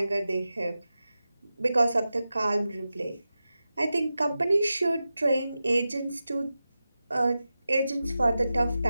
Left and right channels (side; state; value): both; inverted; correlation -0.93